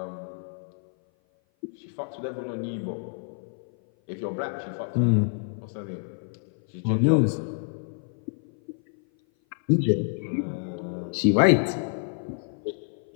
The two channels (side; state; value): right; silent; 56 dB below the other